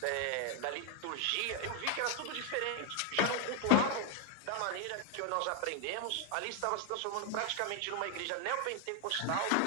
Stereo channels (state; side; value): different; both; correlation 0.01